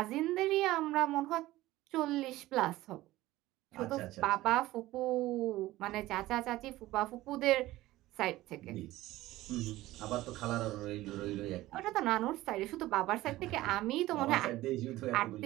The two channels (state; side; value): quieter; left; 16.9 dB